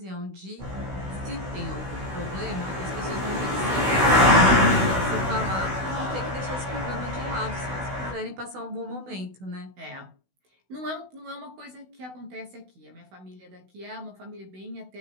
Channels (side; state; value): left; late; 16 ms